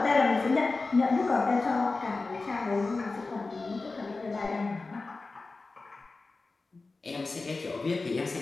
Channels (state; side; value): quieter; right; 3.7 dB